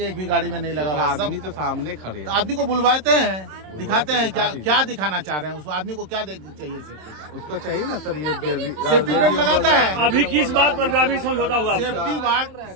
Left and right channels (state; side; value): late; left; 27 ms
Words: एक भी गाड़ी में नहीं लगा हुआ। सब आदमी तो सामने खड़े हैं। आदमी को बुलवाते हैं, दिखाते हैं क्या दिखाना चाह रहे हैं। उस आदमी को क्या चाहिए सेफ्टी का? उसको चाहिए ना सर, ये सेफ्टी बेल्ट लगाता है। अभी किस बात पर ग्रामीण समझौता हुआ? सेफ्टी बात